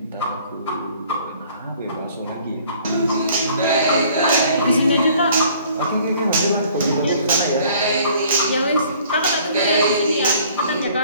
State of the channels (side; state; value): both; inverted; correlation -0.56